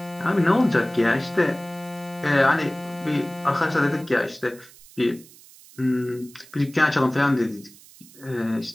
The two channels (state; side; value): noise; right; hiss, 23 dB below the sound